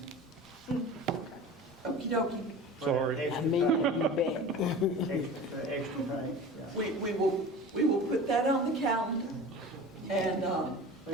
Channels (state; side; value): normal; both; correlation 0.36